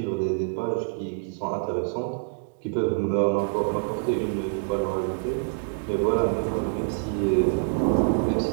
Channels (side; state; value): left; silent; digital silence